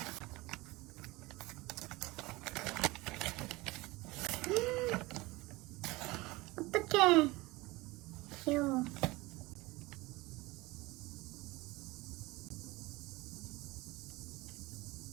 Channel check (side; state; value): left; quieter; 21.8 dB